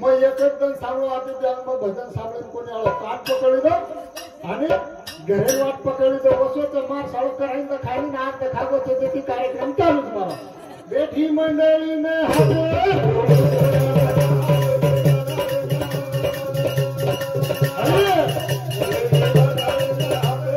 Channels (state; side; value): identical; both; correlation 1.00